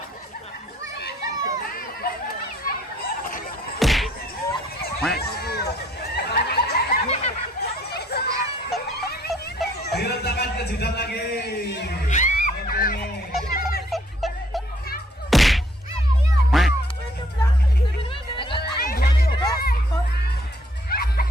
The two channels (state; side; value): normal; both; correlation 0.64